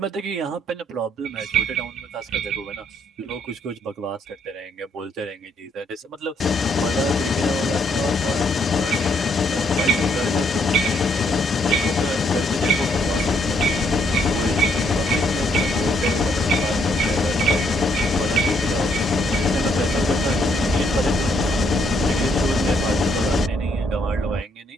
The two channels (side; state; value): both; normal; correlation 0.71